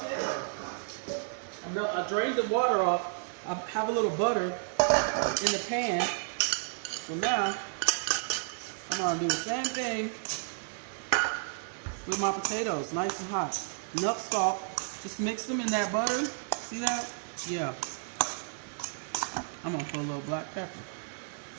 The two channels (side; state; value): left; silent; digital silence